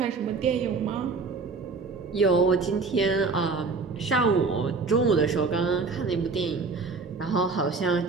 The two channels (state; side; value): quieter; left; 4.3 dB